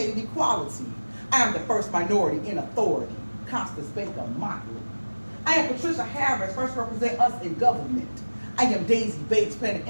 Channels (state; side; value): inverted; both; correlation -1.00